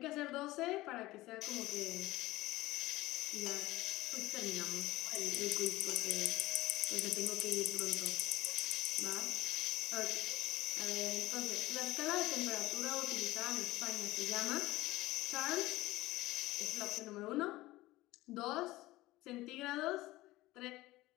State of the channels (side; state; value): right; quieter; 18.3 dB